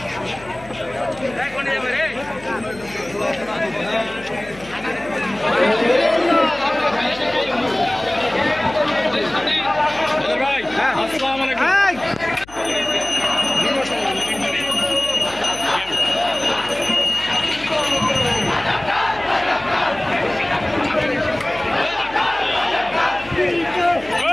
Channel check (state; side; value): noise; left; hum, 21 dB below the sound